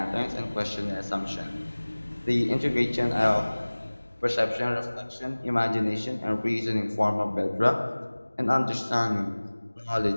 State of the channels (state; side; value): inverted; both; correlation -1.00